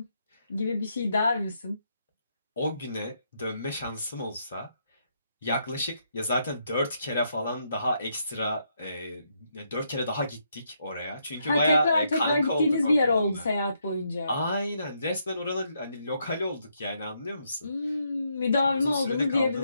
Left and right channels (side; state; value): both; inverted; correlation -0.77